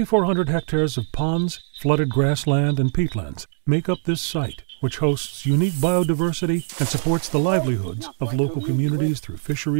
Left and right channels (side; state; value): left; silent; digital silence